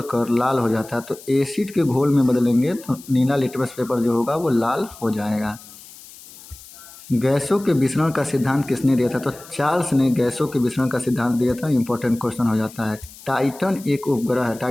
कर लाल हो जाता है? तो एसिड के घोल में बदलेंगे तो नीला लिटमस पेपर जो होगा वो लाल हो जाएगा। गैसों के विसरण का सिद्धांत किसने दिया था? तो चार्ल्स ने गैसों के विसरण का सिद्धांत दिया था। इंपॉर्टेंट क्वेश्चन हो जाता है। टाइटन एक उपग्रह है।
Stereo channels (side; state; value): left; noise; hiss, 19 dB below the sound